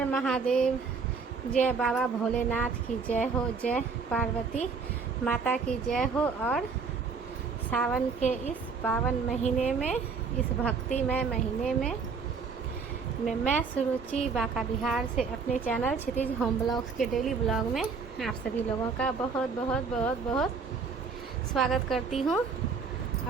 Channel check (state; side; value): quieter; left; 5.1 dB